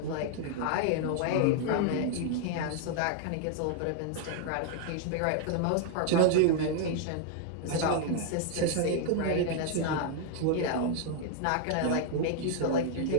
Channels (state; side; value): different; both; correlation 0.00